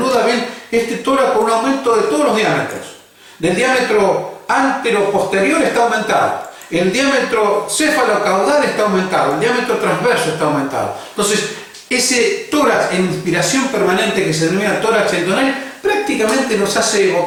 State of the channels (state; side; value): identical; both; correlation 1.00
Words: ven este tórax con un aumento de todos los diámetros. Del diámetro antero-posterior está aumentado, el diámetro céfalo-caudal está aumentado, el diámetro transverso está aumentado. Entonces, ese tórax en inspiración permanente que se denomina tórax entonal prácticamente nos hace